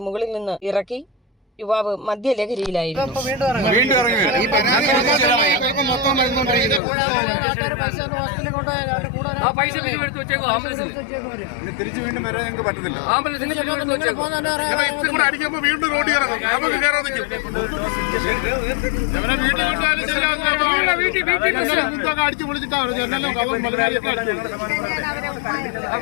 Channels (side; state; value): right; drops out; at 6.8 s